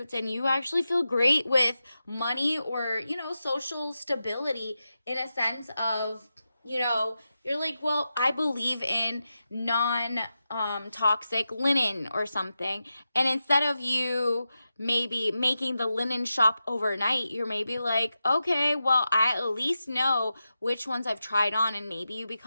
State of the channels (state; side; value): inverted; both; correlation -0.91